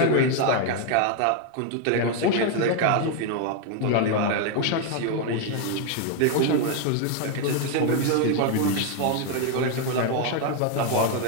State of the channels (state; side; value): different; both; correlation 0.01